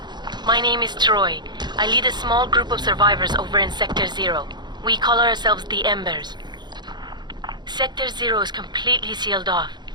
My name is Troy. I lead a small group of survivors over in Sector 0. We call ourselves the Embers. Sector 0 is completely sealed off.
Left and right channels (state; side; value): late; left; 0.21 ms